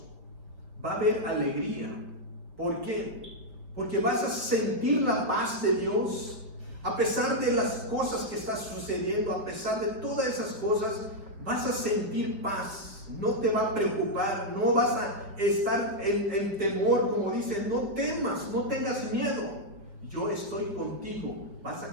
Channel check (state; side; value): late; left; 4.8 ms